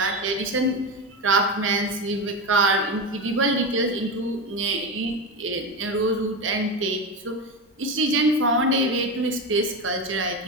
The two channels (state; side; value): normal; both; correlation 0.18